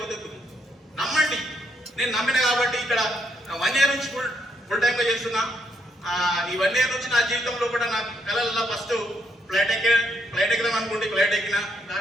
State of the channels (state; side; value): normal; both; correlation 0.75